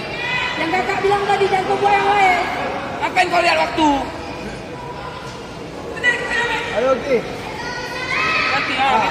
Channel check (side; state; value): both; identical; correlation 1.00